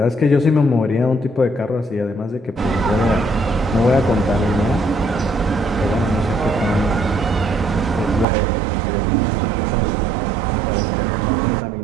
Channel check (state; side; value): drops out; left; at 8.2 s